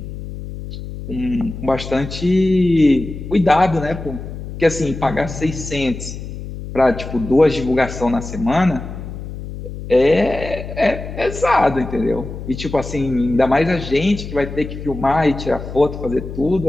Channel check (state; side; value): noise; left; hum, 10 dB below the sound